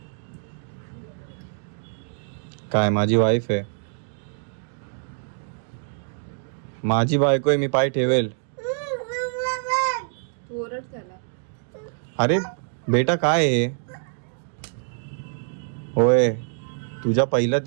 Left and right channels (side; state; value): left; silent; digital silence